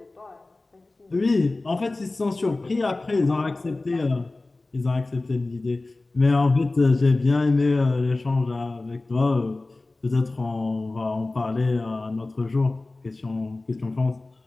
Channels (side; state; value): right; quieter; 3.1 dB